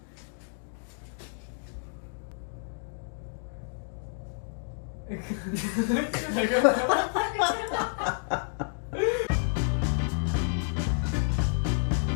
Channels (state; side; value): silent; right; 58 dB below the other